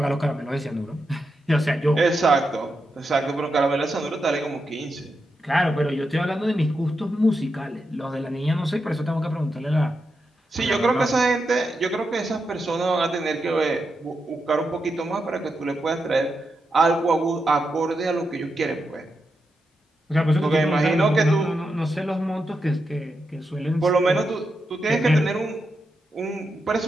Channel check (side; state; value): both; normal; correlation 0.86